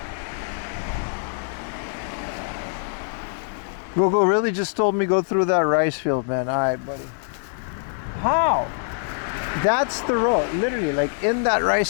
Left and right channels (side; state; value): right; silent; digital silence